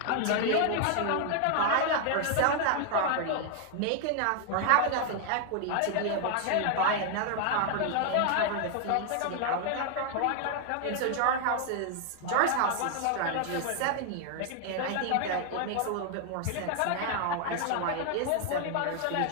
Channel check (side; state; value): both; different; correlation 0.00